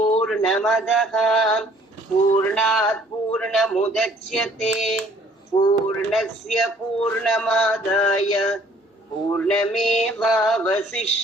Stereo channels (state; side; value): normal; both; correlation 0.58